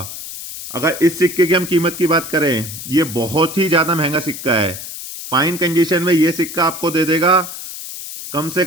अगर इस सिक्के की हम कीमत की बात करें, ये बहुत ही ज्यादा महंगा सिक्का है। फाइन कंडीशन में ये सिक्का आपको दे देगा कम से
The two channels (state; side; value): noise; left; hiss, 10 dB below the sound